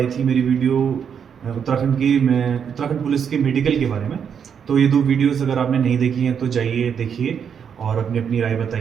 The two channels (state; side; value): quieter; left; 7.5 dB